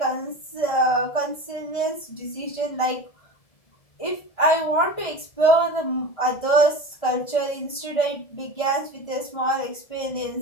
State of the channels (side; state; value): right; late; 1.7 ms